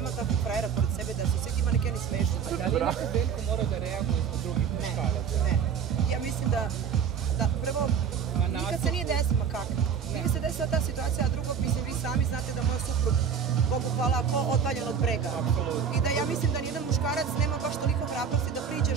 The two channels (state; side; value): quieter; left; 7.0 dB